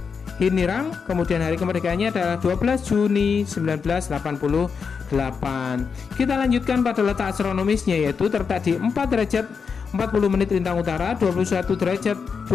Hinirang. Kemudian hari kemerdekaannya adalah 12 Juni 1988. Kita lanjutkan pada letak astronomisnya, yaitu terletak di 4 derajat 40 menit lintang utara, 21 derajat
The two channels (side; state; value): right; quieter; 5.8 dB